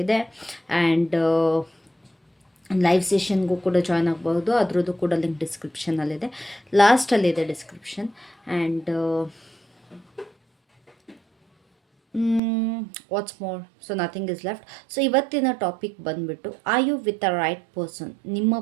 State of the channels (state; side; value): drops out; left; at 12.4 s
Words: And live ಸೆಷನ್ಗೂ ಕೂಡ join ಆಗ್ಬೋದು. ಅದರದ್ದು ಕೂಡ ಲಿಂಕ್ ಡಿಸ್ಕ್ರಿಪ್ಷನಲ್ಲಿದೆ, ಲಾಸ್ಟಲ್ಲಿದೆ description. And what's more, so nothing is left. So ಇವತ್ತಿನ ಟಾಪಿಕ್ ಬಂದುಬಿಟ್ಟು, are you with the right person? ನಿಮ್ಮ